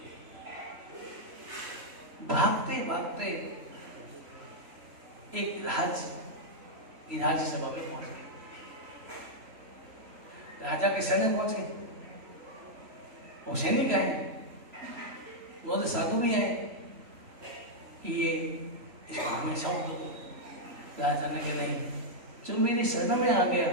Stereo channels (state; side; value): late; left; 3.1 ms